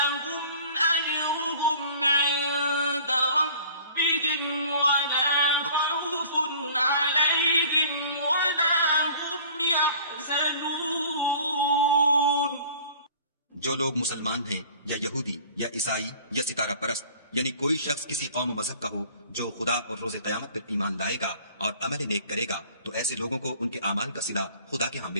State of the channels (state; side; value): inverted; both; correlation -0.48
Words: أجرهم عند ربهم ولا خوف عليهم ولا هم يحزنون. جو لوگ مسلمان ہیں یا یہودی یا عیسائی یا ستارہ پرست، یعنی کوئی شخص کسی قوم و مذہب کا ہو جو خدا اور روز قیامت پر ایمان لائے گا اور عمل نیک کرے گا تو ایسے لوگوں کو ان کے اعمال کا صلہ خدا کے ہاں